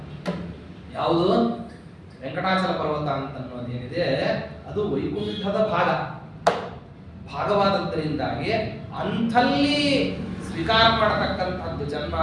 ಯಾವುದು? ವೆಂಕಟಾಚಲ ಪರ್ವತ ಅಂತ ಅನ್ನೋದೇನಿದೆ ಅದು ವೈಕುಂಠದ ಭಾಗವಾದದ್ದರಿಂದಾಗಿ ಅಂಥಲ್ಲಿ ಸ್ವೀಕಾರ ಮಾಡತಕ್ಕಂಥದ್ದು ಜನ್ಮ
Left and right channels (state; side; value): identical; both; correlation 1.00